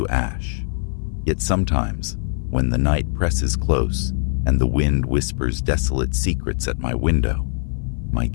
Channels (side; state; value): right; silent; 55 dB below the other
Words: ash. Yet sometimes, when the night presses close and the wind whispers desolate secrets at my window, my